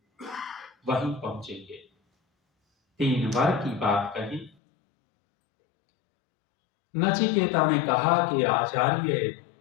वहीं पहुंचेंगे। 3 वर की बात कही। नचिकेता ने कहा कि आचार्य,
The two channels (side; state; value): right; drops out; at 4.5 s